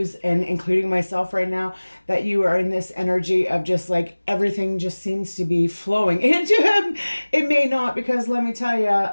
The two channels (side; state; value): both; inverted; correlation -1.00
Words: and including myself right now, that you are in this energy of just like everything just seems to be flowing into him. It may not, because let me tell you,